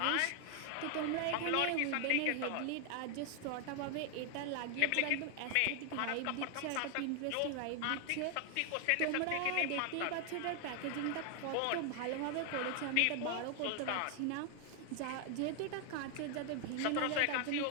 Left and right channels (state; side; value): different; both; correlation 0.00